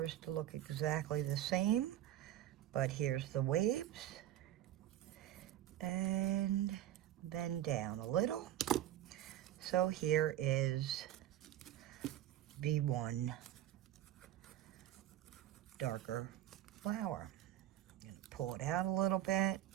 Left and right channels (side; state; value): left; quieter; 12.6 dB